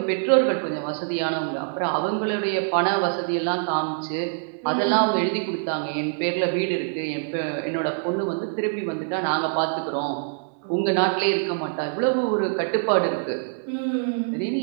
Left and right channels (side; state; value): left; silent; digital silence